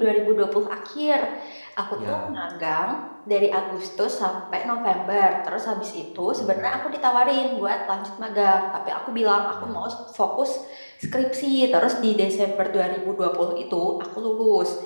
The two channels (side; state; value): both; inverted; correlation -1.00